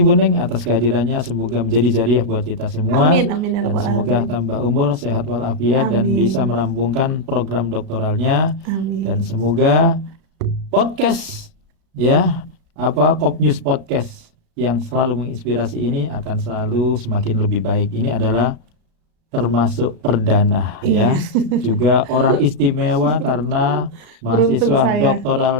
Bu Ning atas kehadirannya. Semoga menjadi jariah buat kita semua. Amin, amin, ya Dan Rabbal semoga Alamin. tambah umur, sehat walafiat, dan bisa Amin, merampungkan program doktoralnya. Dan amin. semoga podcast ya Kop News Podcast yang selalu menginspirasi ini akan selalu semakin lebih baik. Ini adalah termasuk perdana Iya, ya, juga orang istimewa karena beruntung mahasiswa saya.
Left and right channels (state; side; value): late; left; 36 ms